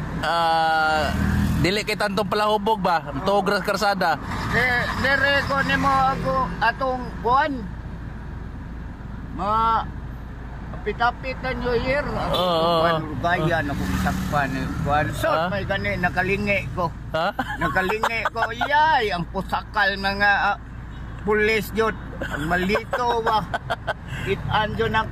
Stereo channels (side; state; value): both; identical; correlation 1.00